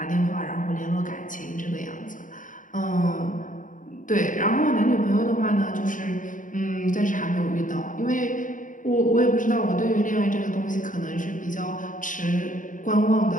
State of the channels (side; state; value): right; late; 0.38 ms